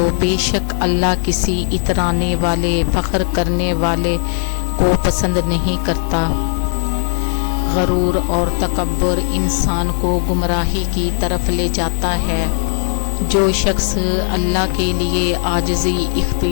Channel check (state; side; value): silent; right; digital silence